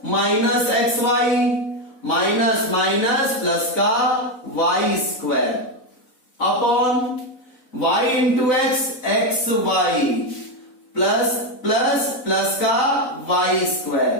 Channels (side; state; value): right; late; 4.0 ms